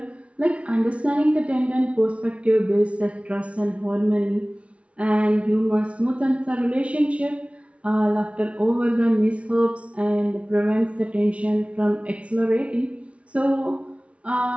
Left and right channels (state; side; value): late; left; 0.062 ms